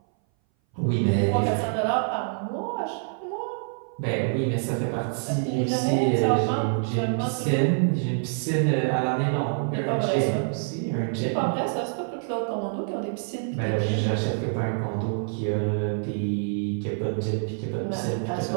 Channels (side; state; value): left; silent; 59 dB below the other